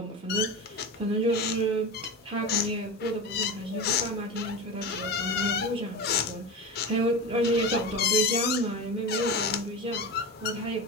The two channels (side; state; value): both; normal; correlation 0.25